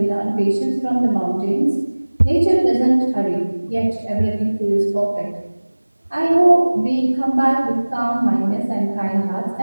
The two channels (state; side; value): inverted; both; correlation -1.00